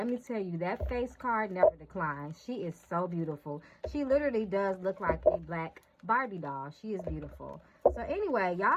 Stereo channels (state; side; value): identical; both; correlation 1.00